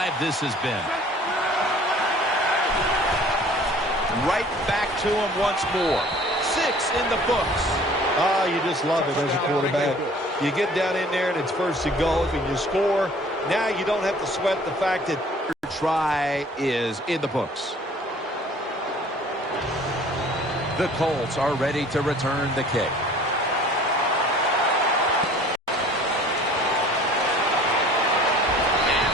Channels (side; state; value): both; normal; correlation 0.50